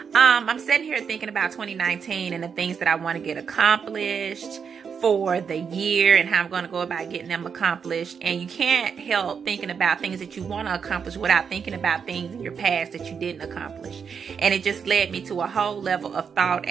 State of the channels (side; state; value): left; quieter; 6.6 dB